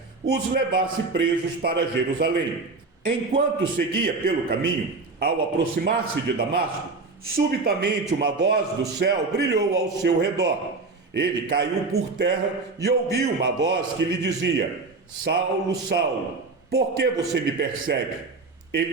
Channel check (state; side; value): quieter; left; 3.9 dB